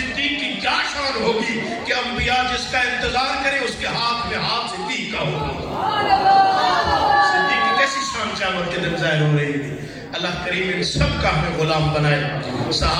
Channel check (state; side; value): identical; both; correlation 1.00